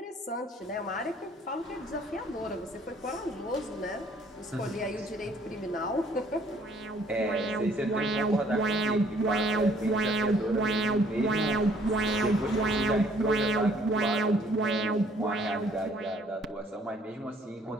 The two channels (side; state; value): both; normal; correlation 0.61